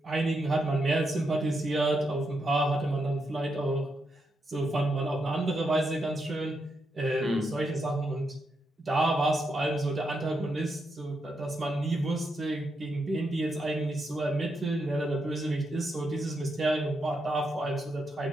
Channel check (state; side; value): normal; both; correlation 0.83